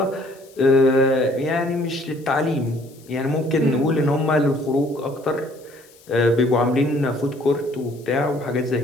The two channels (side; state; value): left; noise; hiss, 27 dB below the sound